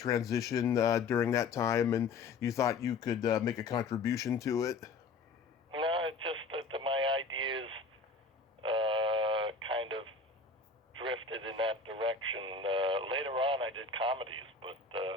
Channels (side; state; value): right; quieter; 4.3 dB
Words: during that time, and you thought you could make a contribution to it? No, it's just that my ideas kind of drifted in that direction. Later on, I did comedies, but